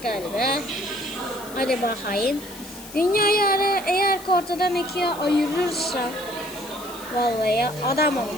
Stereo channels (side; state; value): left; noise; hiss, 16 dB below the sound